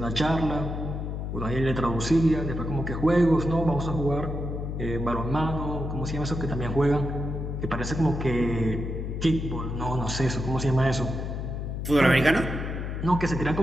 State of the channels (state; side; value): noise; left; hum, 4 dB below the sound